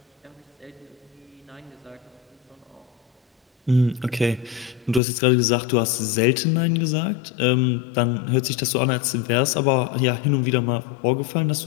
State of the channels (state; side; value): drops out; right; at 5.0 s